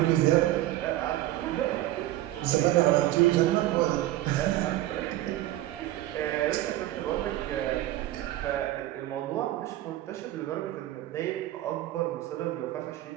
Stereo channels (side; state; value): left; quieter; 15.1 dB